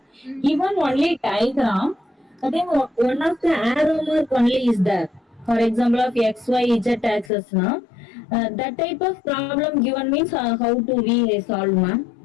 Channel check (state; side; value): drops out; right; at 7.3 s